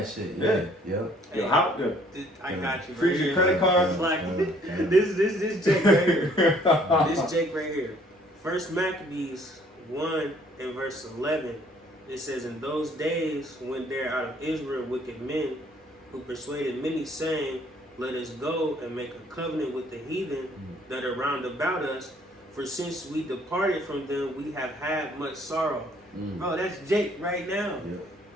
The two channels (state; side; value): normal; both; correlation 0.60